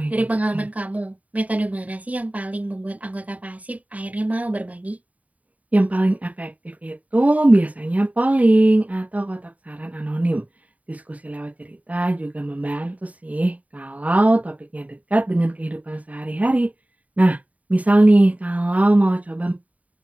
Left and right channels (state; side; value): late; left; 0.070 ms